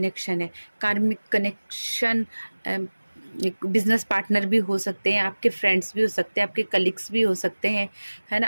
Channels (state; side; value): inverted; both; correlation -1.00